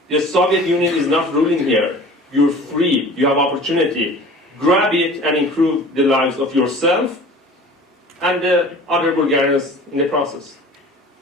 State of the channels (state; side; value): normal; both; correlation 0.43